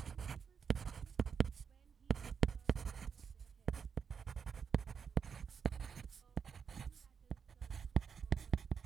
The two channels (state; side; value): quieter; left; 6.5 dB